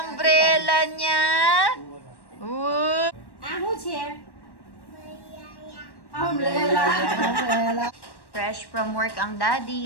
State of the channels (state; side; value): late; right; 1.1 ms